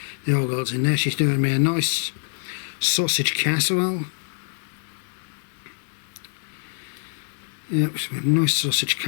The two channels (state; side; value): silent; right; digital silence